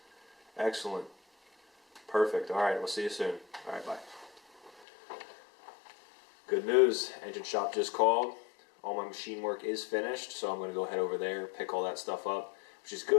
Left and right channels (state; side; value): drops out; right; at 4.9 s